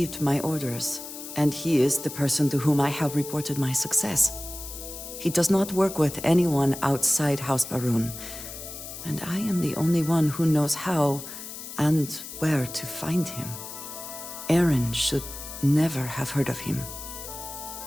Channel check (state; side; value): noise; left; hiss, 11 dB below the sound